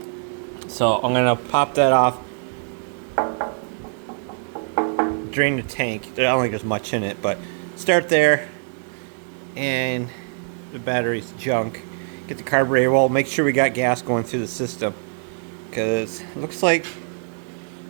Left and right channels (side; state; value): left; silent; 59 dB below the other